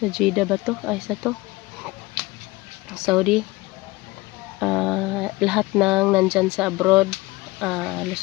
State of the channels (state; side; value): quieter; right; 21.3 dB